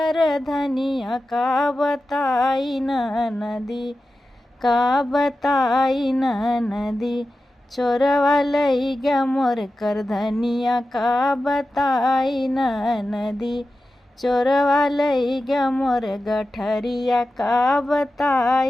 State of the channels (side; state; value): both; normal; correlation 0.93